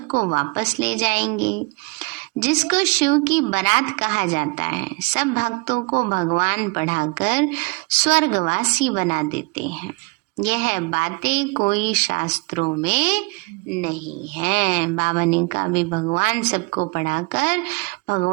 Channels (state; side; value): quieter; left; 29.5 dB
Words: वापस ले जाएंगे। जिसको शिव की बारात कहा जाता है, सब भक्तों को भगवान पढ़ाकर स्वर्गवासी बना देते हैं। यह बातें कोई शास्त्रों में नहीं है। बाबा ने कहा भी भगवान सबको पढ़ाकर